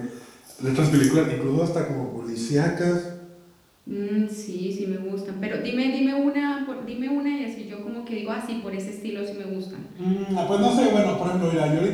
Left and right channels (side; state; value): both; identical; correlation 1.00